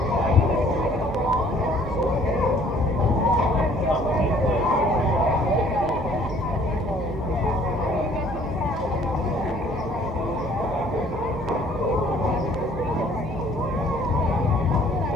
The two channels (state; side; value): normal; both; correlation 0.57